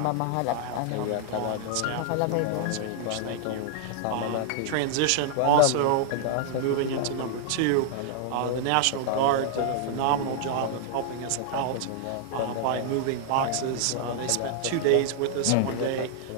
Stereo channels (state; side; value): different; both; correlation 0.00